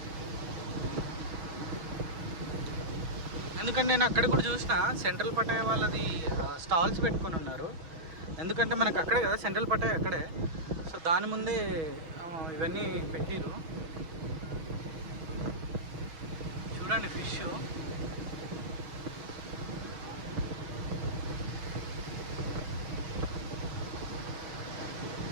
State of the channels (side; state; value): left; late; 6.2 ms